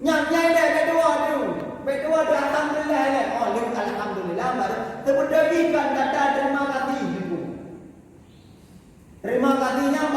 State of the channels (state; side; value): identical; both; correlation 1.00